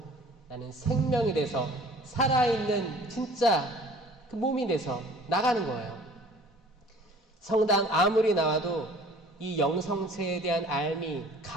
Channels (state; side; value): normal; both; correlation 0.50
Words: 나는 생명이 돼서 살아있는 진짜 그 몸이 돼서 나가는 거예요. 성당 아무리 나와도 이 영성체에 대한 알미